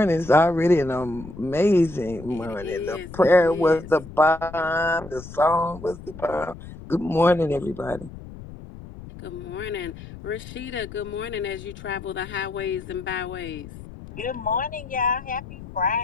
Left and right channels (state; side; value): noise; left; rumble, 14 dB below the sound